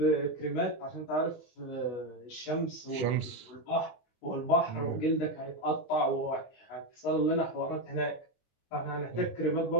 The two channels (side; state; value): right; late; 24 ms